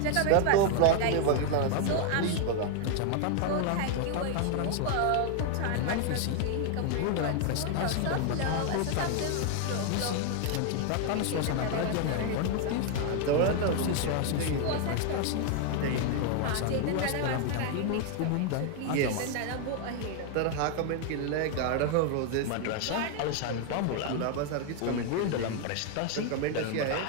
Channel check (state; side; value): different; both; correlation 0.00